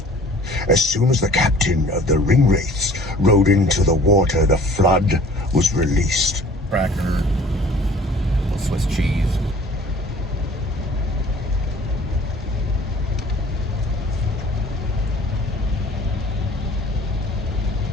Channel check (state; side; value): normal; both; correlation 0.50